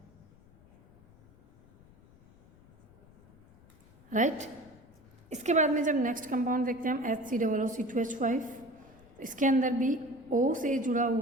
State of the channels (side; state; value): left; noise; rumble, 26 dB below the sound